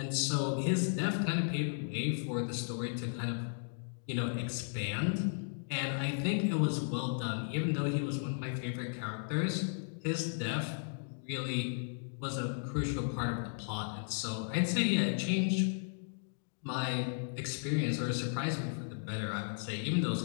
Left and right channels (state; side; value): silent; right; digital silence